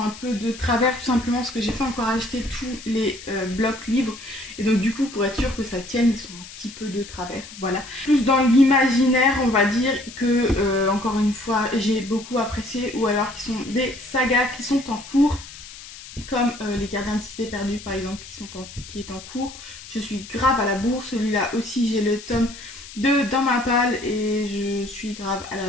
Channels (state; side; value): noise; left; hiss, 15 dB below the sound